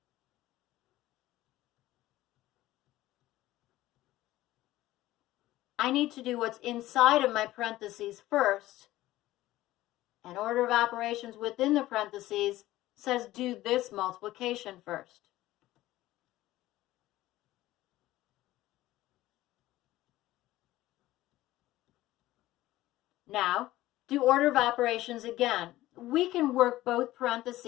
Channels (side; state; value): right; quieter; 16.1 dB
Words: I need to do what's inside of my parentheses first, and order of operations within the parentheses says do this multiplication first. Now, do order of operations again. We can work both